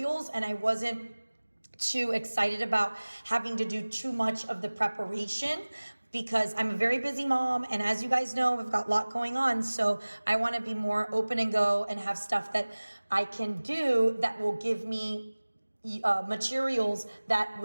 and I wasn't too excited about having to do too much of the preparation, because I'm a very busy mom, and as you guys know, I've got a lot going on, so I want to be more open and go and have stuff that I can do that will give me materials that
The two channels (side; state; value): both; inverted; correlation -1.00